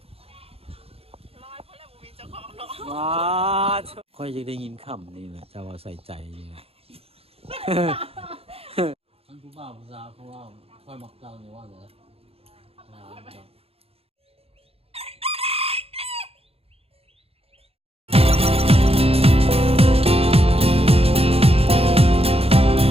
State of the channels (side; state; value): left; late; 0.28 ms